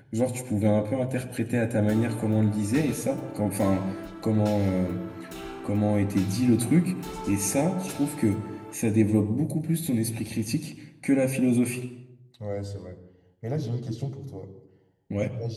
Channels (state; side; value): identical; both; correlation 1.00